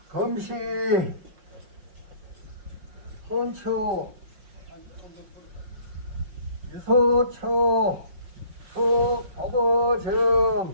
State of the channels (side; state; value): left; late; 5.6 ms